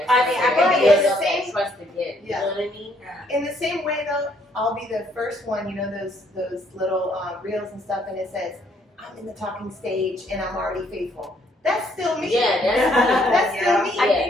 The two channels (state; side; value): normal; both; correlation 0.68